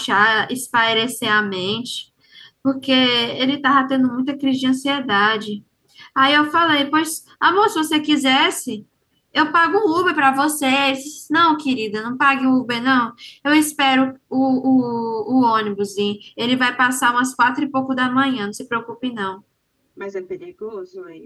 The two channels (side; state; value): both; identical; correlation 1.00